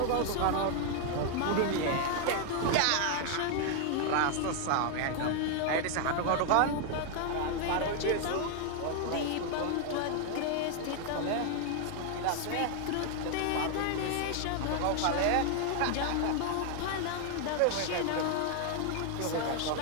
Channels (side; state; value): both; different; correlation 0.00